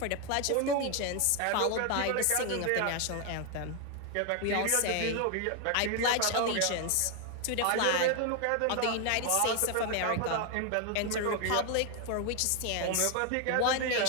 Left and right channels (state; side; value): different; both; correlation 0.01